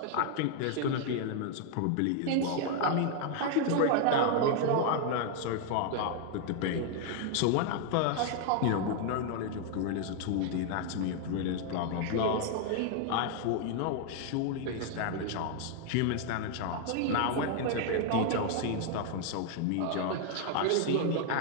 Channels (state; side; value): different; both; correlation 0.00